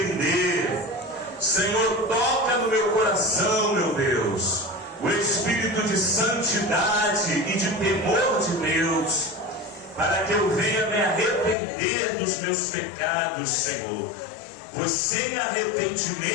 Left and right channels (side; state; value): right; drops out; at 11.6 s